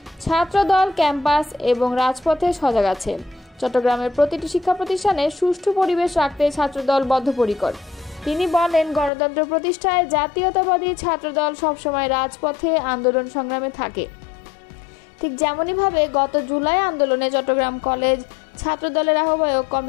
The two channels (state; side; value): drops out; right; at 9.1 s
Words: ছাত্রদল ক্যাম্পাস এবং রাজপথে সজাগ আছে। চট্টগ্রামের প্রতিটি শিক্ষা প্রতিষ্ঠানে সুষ্ঠু পরিবেশ রাখতে ছাত্রদল বদ্ধপরিকর। তিনি বলেন, গণতন্ত্র প্রতিষ্ঠায় জাতীয়তাবাদী ছাত্রদল সবসময় রাজপথে আন্দোলন সংগ্রামে থাকে। ঠিক যেমনইভাবে গত জুলাই আন্দোলনে চট্টগ্রাম কলেজ ছাত্রদলের আহ্বায়ক